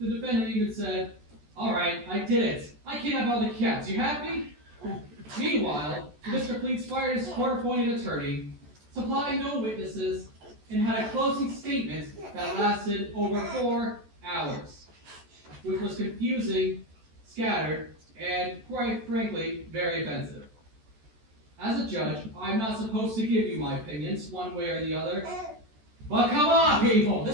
defendant even said, "All right, I did it. I kidnapped all the cats. You happy?" Meanwhile, Mr. Cleats fired his court-appointed attorney, supplied no witnesses, and had a closing statement that lasted over 4 hours, which was confusing, scattered, and, quite frankly, very offensive. As a judge, I'm not supposed to give you my opinions one way or the other. But come on, people!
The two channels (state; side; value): late; left; 14 ms